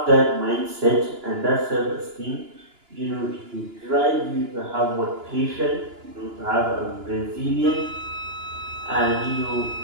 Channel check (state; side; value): late; left; 2.9 ms